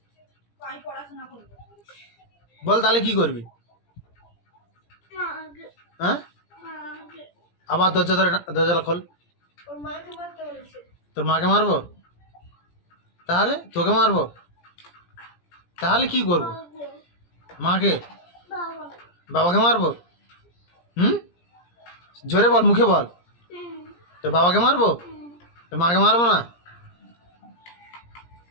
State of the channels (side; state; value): right; late; 17 ms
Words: বল? তাহলে কি করবি? হ্যাঁ আবার দরজা খোল। তোর মাকে মারবো? তাহলে তোকে মারবো? তাহলে কি করবো? মাকে? বাবাকে মারবো? জোরে বল, মুখে বল। তোর বাবাকে মারবো? তোর মাকে মারবো না?